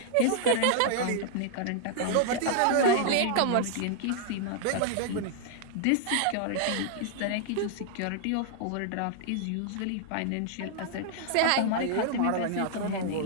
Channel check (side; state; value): both; different; correlation -0.01